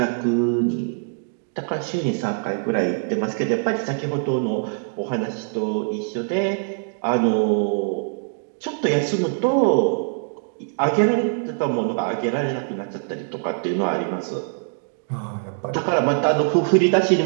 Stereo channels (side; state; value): left; silent; digital silence